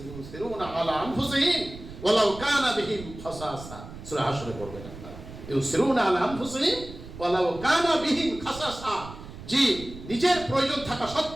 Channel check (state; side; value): noise; right; rumble, 14 dB below the sound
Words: ইউসিরুনা আলা আনফুসিহিম ওয়ালাউ কানা বিহিম খাসাসা। সূরা হাশরে পড়বেন আপনারা, ইউসিরুনা আলা আনফুসিহিম ওয়ালাউ কানা বিহিম খাসাসা। জি, নিজের প্রয়োজন থাকা